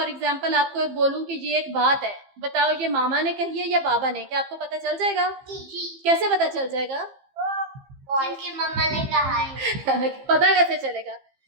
एग्जांपल आपको बोलूं कि ये एक बात है, बताओ ये मामा ने कही है या बाबा ने, क्या आपको पता चल जाएगा? जी। कैसे पता चल जाएगा? क्योंकि मम्मा ने कहा है। पता कैसे चलेगा?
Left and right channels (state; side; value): late; left; 15 ms